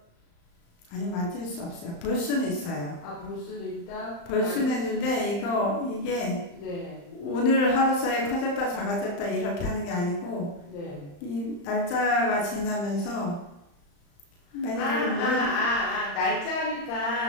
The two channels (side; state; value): right; late; 35 ms